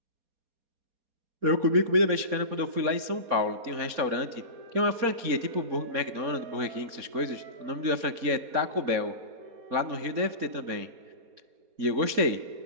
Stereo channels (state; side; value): late; left; 4.2 ms